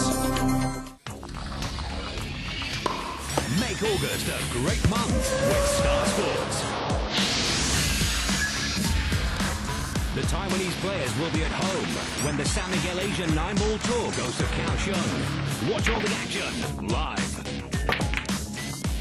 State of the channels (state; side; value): identical; both; correlation 1.00